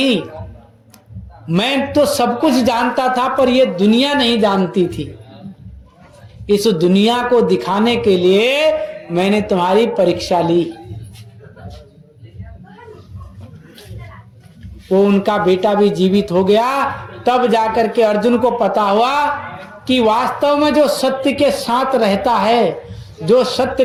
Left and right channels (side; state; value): both; identical; correlation 1.00